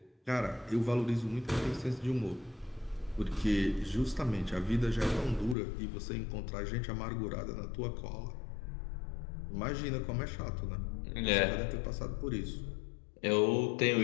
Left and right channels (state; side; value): drops out; right; at 5.6 s